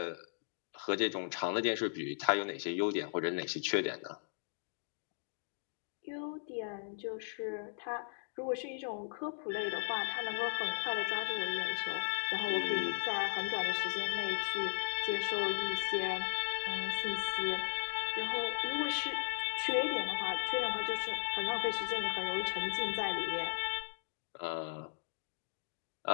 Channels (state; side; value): silent; right; digital silence